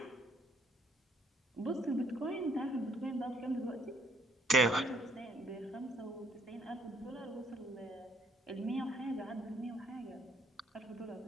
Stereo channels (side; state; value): both; normal; correlation 0.66